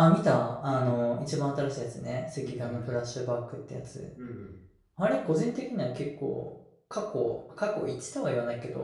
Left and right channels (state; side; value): identical; both; correlation 1.00